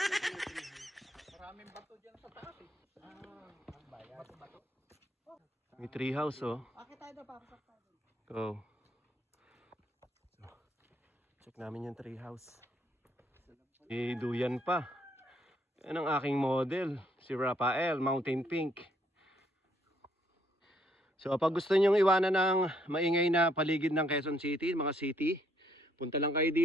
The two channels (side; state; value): both; normal; correlation 0.69